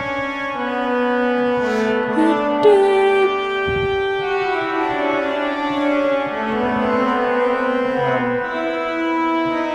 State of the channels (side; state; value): both; identical; correlation 1.00